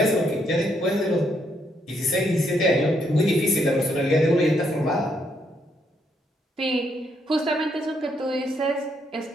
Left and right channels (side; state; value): both; normal; correlation 0.74